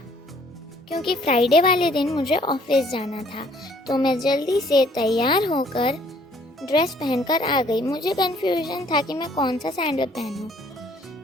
क्योंकि फ्राइडे वाले दिन मुझे ऑफिस जाना था। तो मैं जल्दी से तैयार होकर ड्रेस पहनकर आ गई। मुझे कन्फ्यूजन था कि मैं कौन सा सैंडल पहनूं।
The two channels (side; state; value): both; normal; correlation 0.61